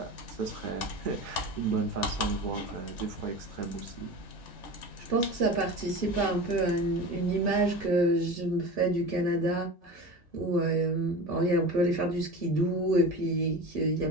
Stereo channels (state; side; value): normal; both; correlation 0.31